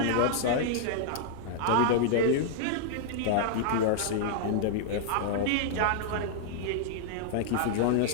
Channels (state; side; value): different; both; correlation -0.01